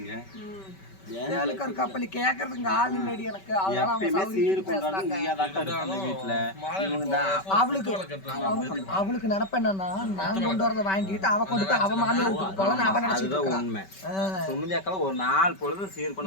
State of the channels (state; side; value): late; right; 5.2 ms